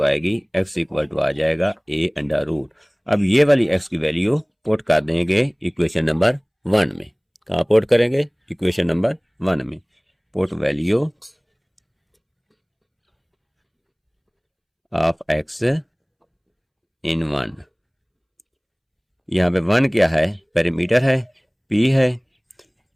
आएगी एक्स इक्वल टू आ जाएगा ए अंडर रूट। अब ये वाली एक्स की वैल्यू पुट कर देंगे इक्वेशन नंबर 1 में। कहाँ पुट करेंगे, इक्वेशन नंबर 1 में। Put value of x in 1। यहाँ पे 1 क्या है, पेरीमीटर है, p है,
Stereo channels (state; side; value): identical; both; correlation 1.00